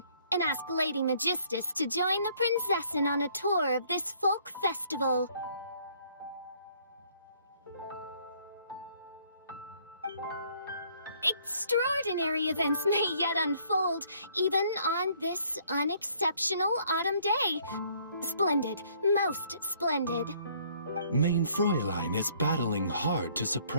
and ask Lady Magistus to join the Prinzessin on a tour of this folk festival. Extraordinary events may yet unfold, even on this unexceptional autumn day. Splendid, most splendid. Mein Fräulein is battling hard to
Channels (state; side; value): inverted; both; correlation -0.63